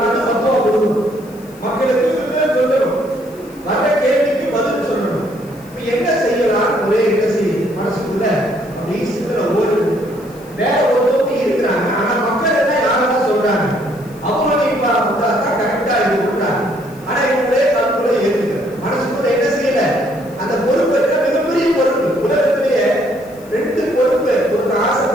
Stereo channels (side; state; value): left; noise; hiss, 25 dB below the sound